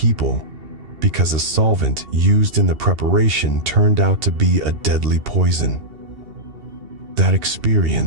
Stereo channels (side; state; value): left; late; 2.7 ms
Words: because a solvent used in the preparation turned out to be a deadly poison. That